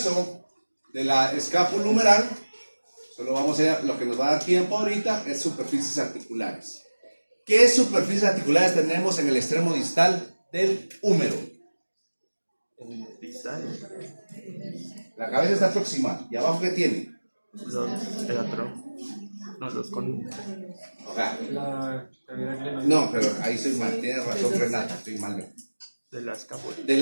de la escápula humeral, solo vamos a ver, lo que nos va a dar tiempo ahorita es superficies articulares. ¿Qué superficies articulares tenemos en el extremo distal del húmero? La cabeza está proximal. ¿Y abajo qué tiene? Los con... La cavidad glenoidea. No, pero ahí soy mal. Tiene razón Renata, estoy mal. de la escápula.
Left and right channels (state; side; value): inverted; both; correlation -1.00